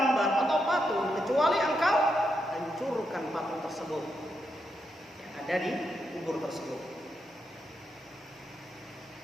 atau patung kecuali engkau hancurkan patung tersebut yang ada di kubur tersebut.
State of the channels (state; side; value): normal; both; correlation 0.82